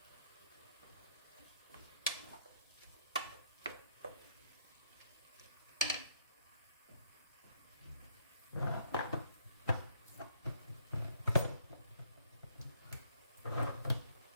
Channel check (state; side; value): inverted; both; correlation -0.70